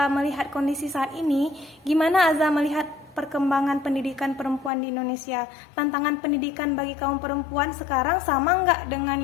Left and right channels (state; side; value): drops out; right; at 4.7 s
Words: melihat kondisi saat ini, gimana Azza melihat perkembangan pendidikan perempuan di Indonesia? Tantangan pendidikan bagi kaum perempuan sekarang sama nggak dengan